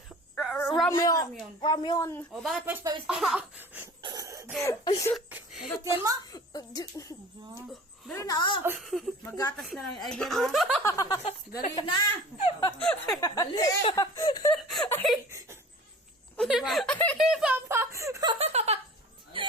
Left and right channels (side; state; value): both; normal; correlation 0.42